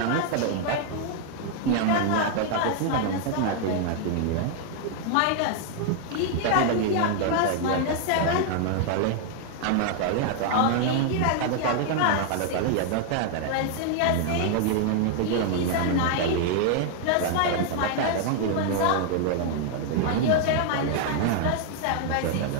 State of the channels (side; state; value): both; different; correlation 0.00